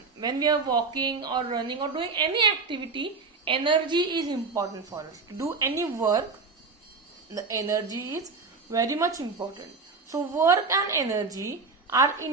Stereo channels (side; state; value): left; quieter; 4.3 dB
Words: when we are walking or running or doing any activity, energy is important for us. To do any work, the energy is very much important. So, work and energy are